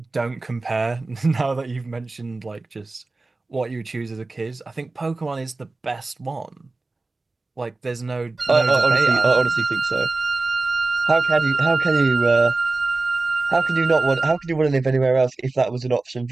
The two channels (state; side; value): quieter; left; 3.4 dB